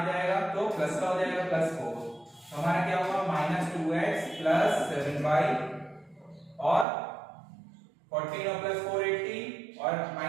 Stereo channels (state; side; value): drops out; left; at 6.9 s